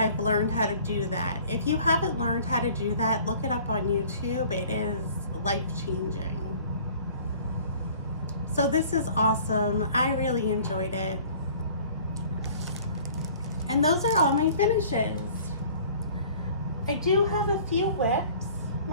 learned how to do that. If you haven't learned how to do that, look it up on YouTube. It is life-changing. So this is awesome. I really enjoyed it. And those are all my finishes. I do have a few whips.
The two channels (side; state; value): both; inverted; correlation -0.50